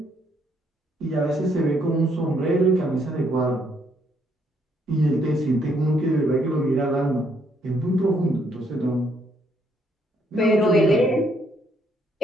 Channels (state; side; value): normal; both; correlation 0.71